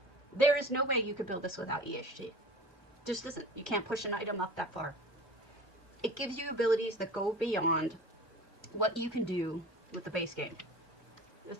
There is no way you could build this without EHT. Just isn't. You can't push an item up that far. It gives you abilities that go beyond what you can do with the base game.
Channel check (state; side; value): normal; both; correlation 0.39